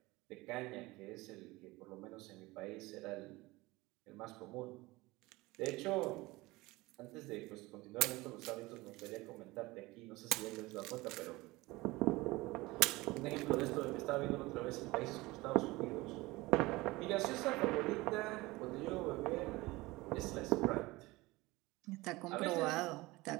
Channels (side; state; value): left; quieter; 21.0 dB